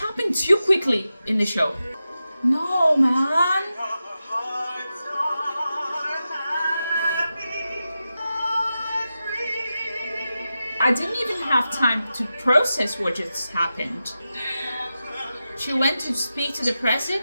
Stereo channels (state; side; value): inverted; both; correlation -0.91